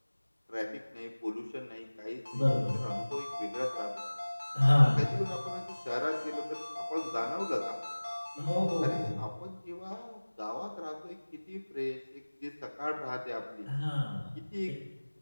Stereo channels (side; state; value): both; inverted; correlation -1.00